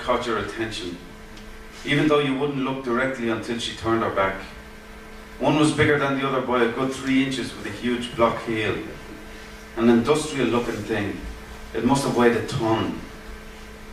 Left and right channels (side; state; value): both; identical; correlation 1.00